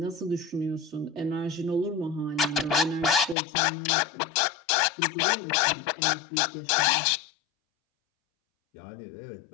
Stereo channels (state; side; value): drops out; right; at 3.4 s